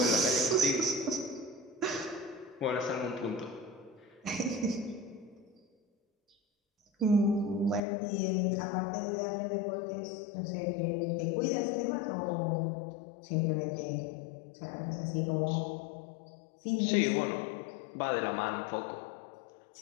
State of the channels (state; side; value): drops out; right; at 7.8 s